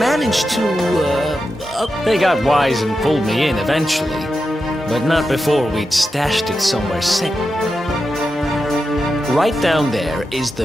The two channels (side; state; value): both; normal; correlation 0.89